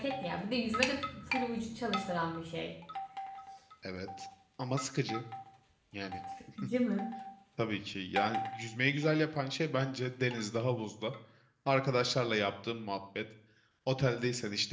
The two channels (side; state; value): both; identical; correlation 1.00